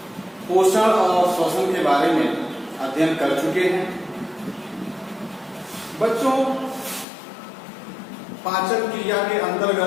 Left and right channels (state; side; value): drops out; right; at 7.1 s